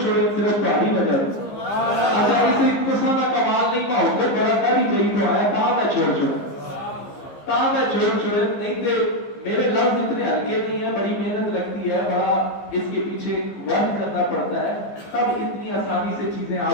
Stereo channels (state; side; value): late; right; 15 ms